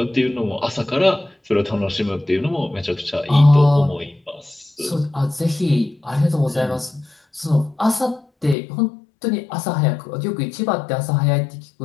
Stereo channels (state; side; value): drops out; right; at 8.6 s